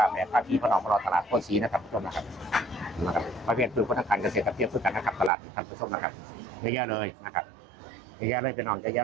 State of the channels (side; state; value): left; drops out; at 5.3 s